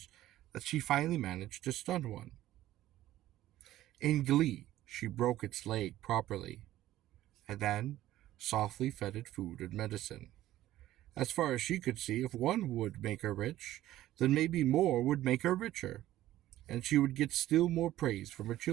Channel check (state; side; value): quieter; left; 14.3 dB